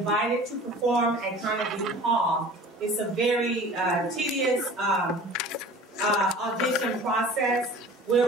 to perform at Carnegie Hall, it's a very tedious audition process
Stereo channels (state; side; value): normal; both; correlation 0.43